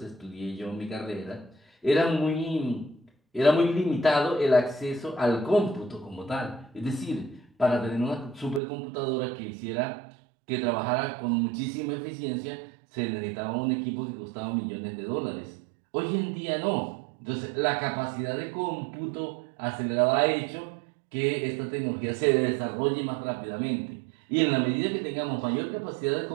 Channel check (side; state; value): left; drops out; at 8.6 s